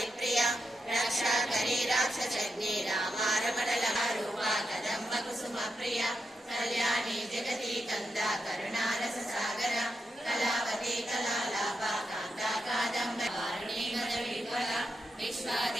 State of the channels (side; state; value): both; normal; correlation 0.86